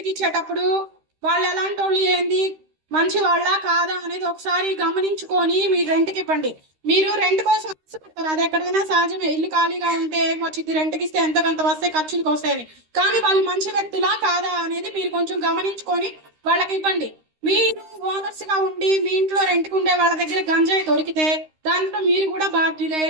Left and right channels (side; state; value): left; late; 13 ms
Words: ఇచ్చేటప్పుడు వాళ్ళు ఎలాంటి వాళ్ళు, ఏంది, మంచి వాళ్ళ కాదా అనేది ఒకసారి గమనించుకొని మీరు రెంట్కి ఇవ్వండి. మీరు రెంట్ కోసం ఆశపడతారు, అది ఎక్కడైనా సహజమే. ఇల్లు ఖాళీగా ఉంటే వచ్చింది, రెంట్కి ఇస్తే ఎంత కొంత వస్తాయి, ఖర్చులకు వస్తాయని. కానీ వాళ్ళు మంచి వ్యక్తులా కాదా అనేది మీరు కొంచెం గమనించుకొని వాళ్ళకి ఇవ్వండి. మీరు ఓనర్స్ గా ఉండి మీ ఇంట్లో రెంట్కి ఉండే వాళ్ళ దగ్గర గంజాయి దొరికితే దాంట్లో మీరు కూడా బాధ్యులే.